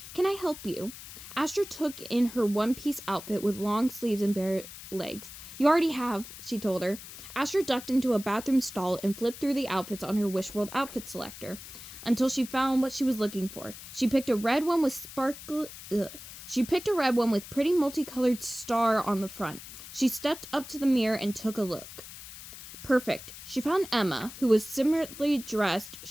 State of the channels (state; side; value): noise; left; hiss, 14 dB below the sound